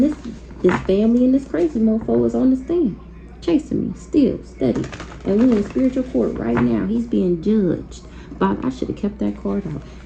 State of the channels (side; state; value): both; identical; correlation 1.00